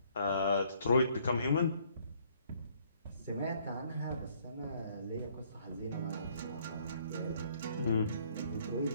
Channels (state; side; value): inverted; both; correlation -0.64